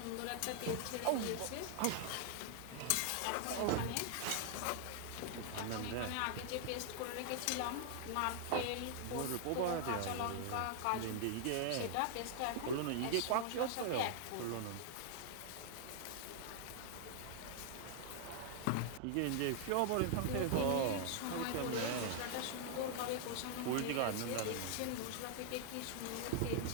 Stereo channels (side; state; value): both; different; correlation 0.00